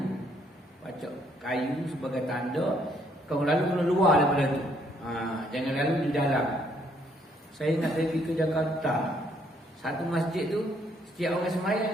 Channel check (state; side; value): normal; both; correlation 0.68